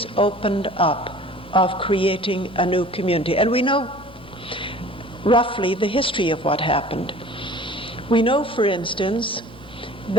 opened up of creating a new community. And we know roughly the history of what happened. We know, for instance,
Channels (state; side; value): noise; left; hum, 23 dB below the sound